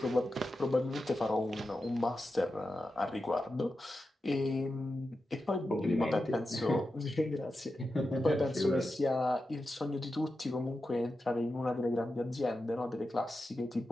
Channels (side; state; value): both; normal; correlation 0.90